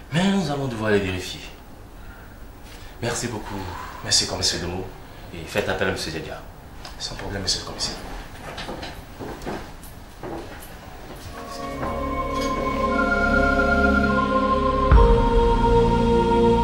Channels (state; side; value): identical; both; correlation 1.00